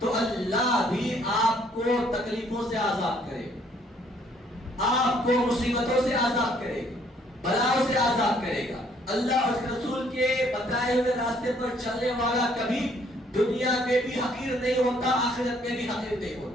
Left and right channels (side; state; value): both; normal; correlation 0.64